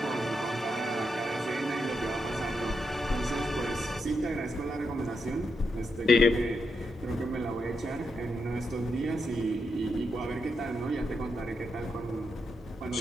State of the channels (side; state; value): both; normal; correlation 0.83